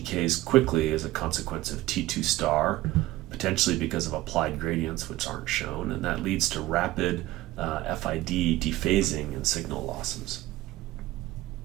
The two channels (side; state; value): left; quieter; 16.8 dB